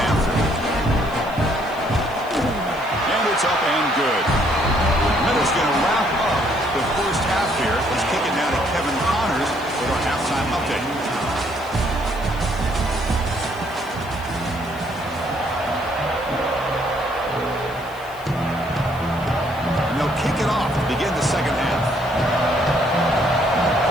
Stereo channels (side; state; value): left; noise; hiss, 23 dB below the sound